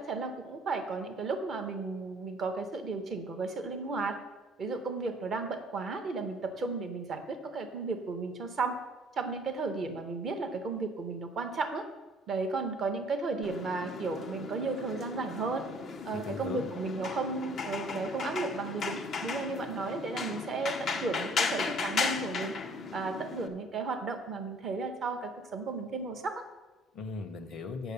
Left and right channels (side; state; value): both; normal; correlation 0.55